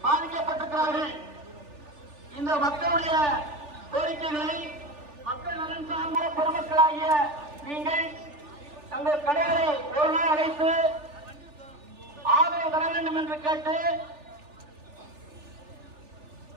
பாதிக்கப்பட்டிருக்கிறார்கள். இந்த மக்களுடைய கோரிக்கைகளை மக்கள் நலன் சார்ந்த பொதுமக்களாகிய நீங்கள் தங்கள் கடைகளை ஒரு நாள் அடைத்து ஆதரவு தர வேண்டும் என்று கேட்டு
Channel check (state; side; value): late; left; 3.4 ms